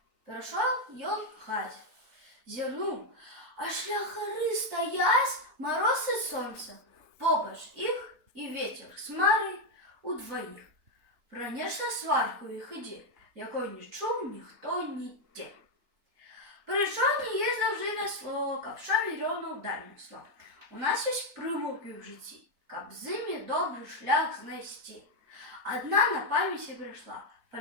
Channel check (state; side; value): late; left; 3.9 ms